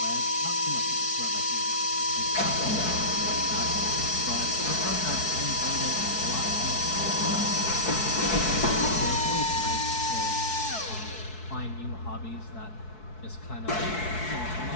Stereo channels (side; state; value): right; late; 4.6 ms